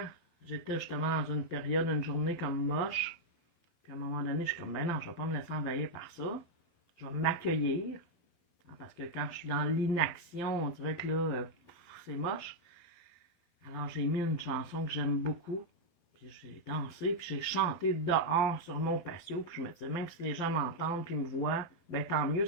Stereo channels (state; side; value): late; right; 12 ms